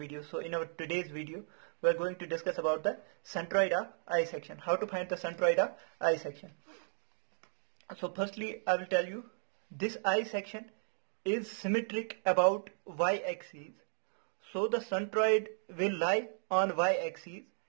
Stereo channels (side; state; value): left; silent; digital silence